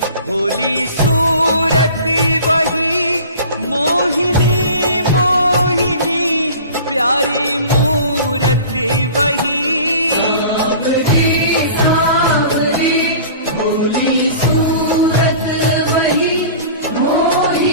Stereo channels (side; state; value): both; inverted; correlation -0.42